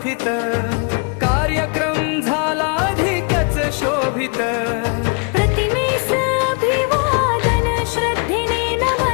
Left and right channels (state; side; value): quieter; right; 35.9 dB